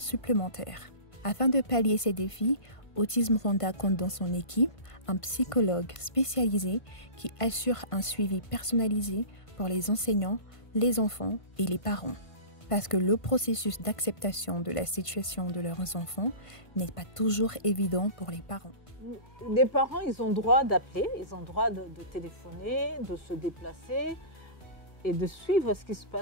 Afin de pallier ces défis, Autisme Rwanda compte dans son équipe un psychologue spécialisé qui assure un suivi personnalisé pour les enseignants, les enfants et les parents. Parce que le processus d'acceptation de la situation de leurs enfants n'est pas toujours évident pour les parents. Les parents, ils ont droit d'appeler, ils ont droit de téléphoner, de se déplacer et de suivre ce qui se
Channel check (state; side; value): late; right; 1.5 ms